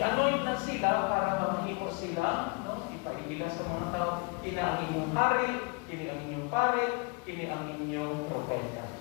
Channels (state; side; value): quieter; right; 31.9 dB